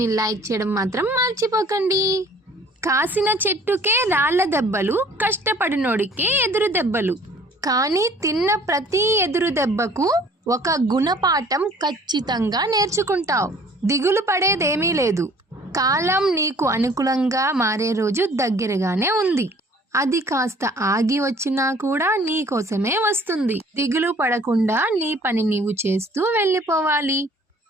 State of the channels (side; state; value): both; normal; correlation 0.53